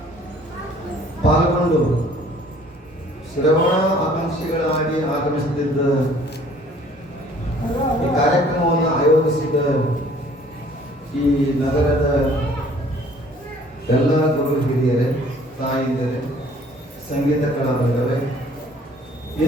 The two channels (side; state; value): both; normal; correlation 0.55